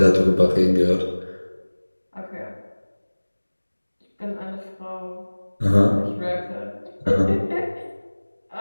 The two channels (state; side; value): inverted; both; correlation -1.00